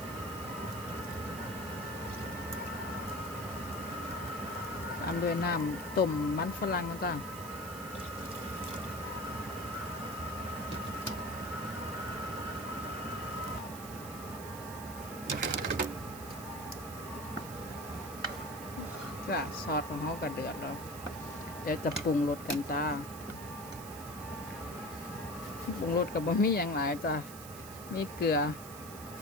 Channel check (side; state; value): right; noise; hiss, 13 dB below the sound